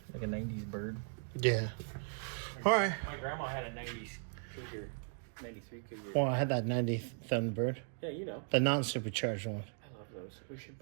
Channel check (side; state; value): left; silent; 53 dB below the other